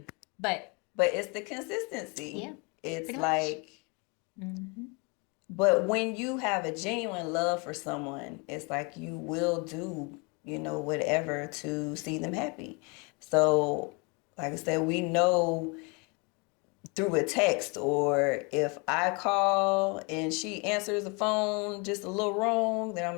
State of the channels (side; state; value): right; quieter; 30.8 dB